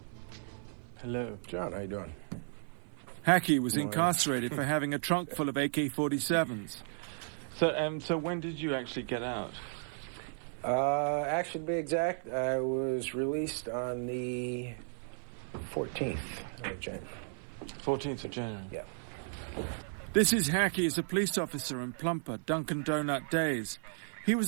Hello. John, how you doing? Hackey was incarcerated for having a trunk full of AK-47s. So when did you actually get out? Actually, to be exact, I was released on the 14th of January. 14th of January? Yeah. This is Hackey as a police officer in Plumper, Dunkin' Donut days. He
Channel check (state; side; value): silent; left; 55 dB below the other